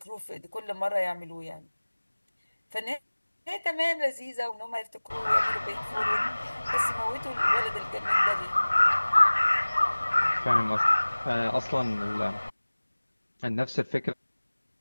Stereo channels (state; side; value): inverted; both; correlation -1.00